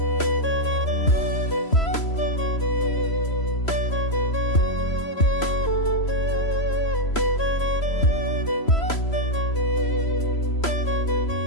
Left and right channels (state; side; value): late; right; 3.0 ms